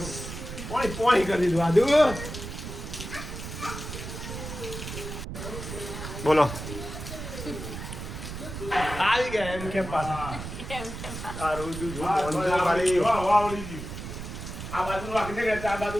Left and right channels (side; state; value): right; noise; rumble, 8 dB below the sound